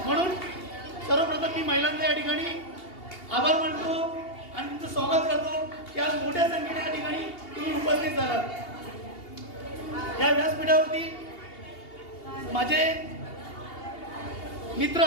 म्हणून सर्वप्रथम मी महिलांना या ठिकाणी आभार मानतो आणि तुमचं स्वागत करतो की आज मोठ्या संख्येने या ठिकाणी तुम्ही उपस्थित झालात. या व्यासपीठावरती माझे मित्र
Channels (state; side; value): late; right; 2.8 ms